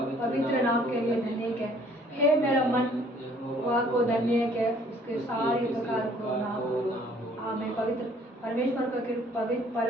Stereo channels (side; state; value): both; normal; correlation 0.58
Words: नाम के लिए धन्य है। हे मेरा मन वह को धन्य है, उसके सारे प्रकार को नाम करो। आमीन। पवित्र